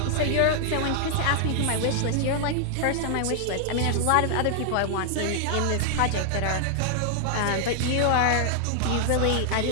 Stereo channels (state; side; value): different; both; correlation 0.00